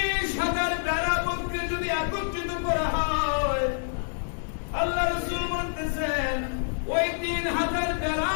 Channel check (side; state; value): right; silent; 60 dB below the other